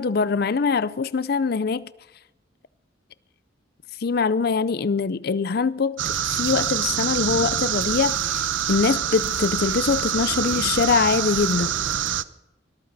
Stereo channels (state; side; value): normal; both; correlation 0.10